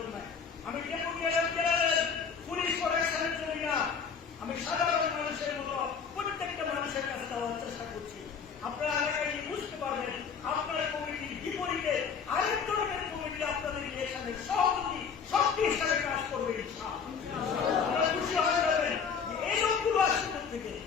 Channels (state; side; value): quieter; right; 6.3 dB